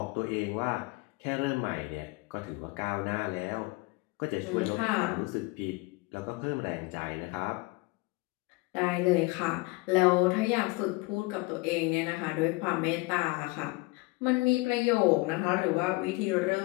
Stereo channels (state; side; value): quieter; right; 24.2 dB